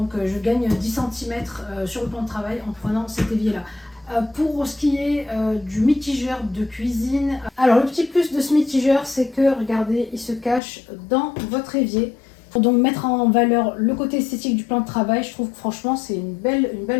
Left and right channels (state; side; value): drops out; right; at 10.6 s